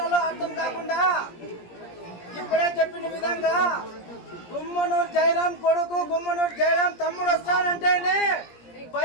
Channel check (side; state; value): right; late; 17 ms